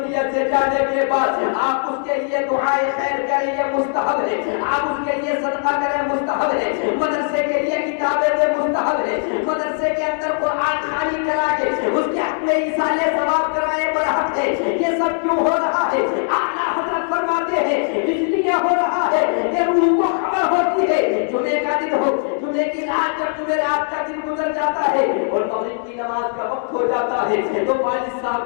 سے جانے کے بعد آپ اس کے لیے دعائے خیر کریں، یہ مستحب ہے، آپ اس کے لیے صدقہ کریں، مستحب ہے، مدرسے کے لیے کتابیں دیں، مستحب ہے، مدرسے کے اندر قرآن خوانی کرا کے اس کے حق میں ایصال ثواب کرائے برحق ہے۔ یہ سب کیوں ہو رہا ہے؟ اعلیٰ حضرت فرماتے ہیں اس لیے ہو رہا ہے کہ روح کو خبر ہوتی ہے جمعے کا دن ہو، جمعے کی رات جب جمعرات کا دن گزر جاتا ہے اور مغرب کی نماز کا وقت ہو جاتا ہے تو والد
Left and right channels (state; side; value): silent; right; 66 dB below the other